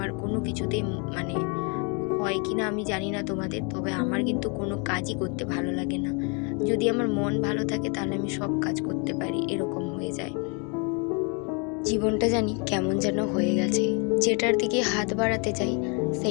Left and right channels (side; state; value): right; quieter; 34.5 dB